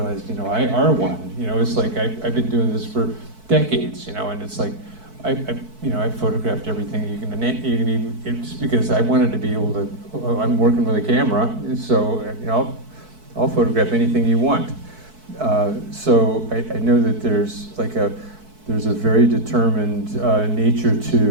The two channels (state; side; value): late; left; 4.6 ms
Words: you know, I are one. You know, it's like I've been doing this for decades, you know, and it's like I photographed everything you can even, it's because I wanted to be able to. I'm working with a camera, so you know, I'll photograph anything you want. So I know that there's a very determined nature